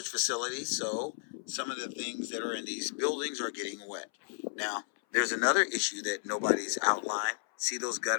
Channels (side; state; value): right; silent; 56 dB below the other